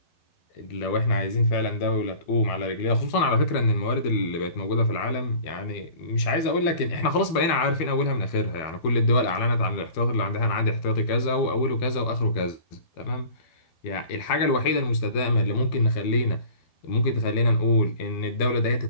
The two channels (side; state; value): right; late; 12 ms